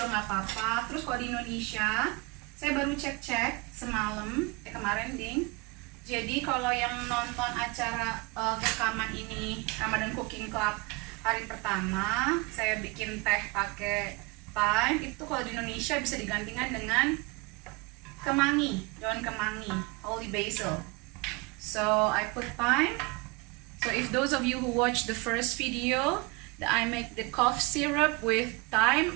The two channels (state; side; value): quieter; left; 26.6 dB